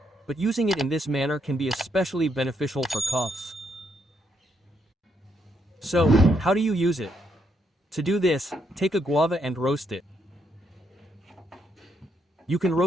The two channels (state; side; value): normal; both; correlation 0.76